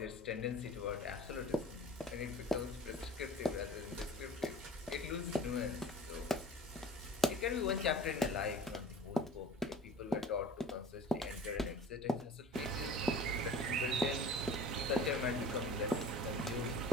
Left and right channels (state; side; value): normal; both; correlation 0.42